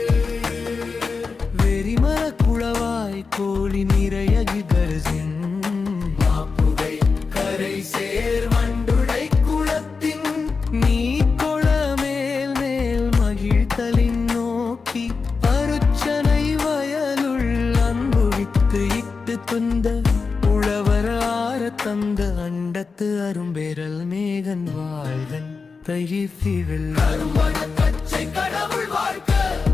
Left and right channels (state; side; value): quieter; right; 4.7 dB